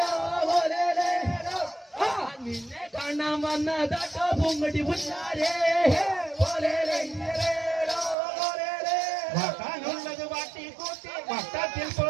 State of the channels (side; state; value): left; drops out; at 8.2 s